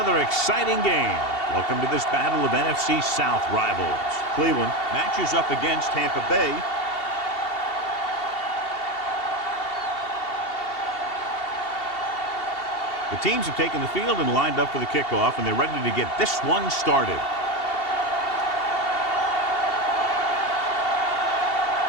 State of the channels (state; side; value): late; right; 2.7 ms